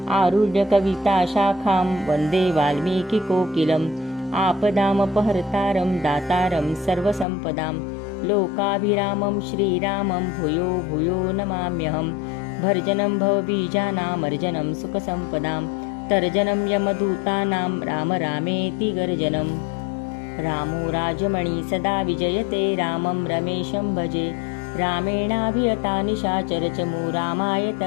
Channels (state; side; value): drops out; right; at 7.2 s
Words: आरुह्य कविताशाखां वन्दे वाल्मीकिकोकिलम् आपदामपहर्तारं दातारं सर्वसम्पदां लोकाभिरामं श्रीरामं भूयो भूयो नमाम्यहं भर्जनं भवबीजानामर्जनं सुखसम्पदां तर्जनं यमदूतानां राम रामेति गर्जनम् रामो राजमणि सदा विजयते रामं रमेशं भजे रामेणाभियता निशाचरचमू रामाय